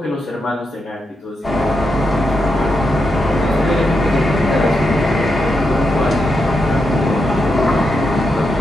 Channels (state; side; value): normal; both; correlation 0.84